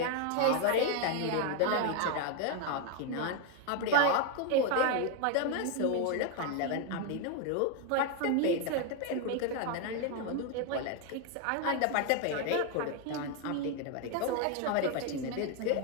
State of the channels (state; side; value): different; both; correlation 0.01